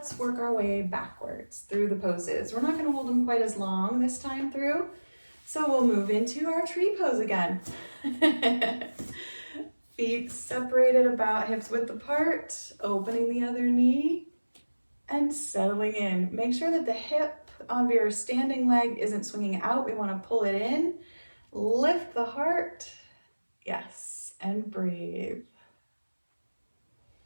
work our way backwards through the poses. We're not going to hold them quite as long this time through. So we'll move into our tree pose again. Feet separated about hips width apart, opening the other knee and settling in. Make sure that the hip of your standing leg isn't swinging out. We want to pull it in. Lift the heart. Yes, and breathe.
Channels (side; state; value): both; inverted; correlation -1.00